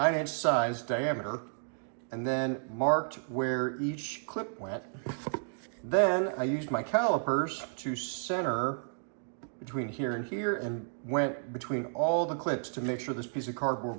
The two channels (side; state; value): left; silent; digital silence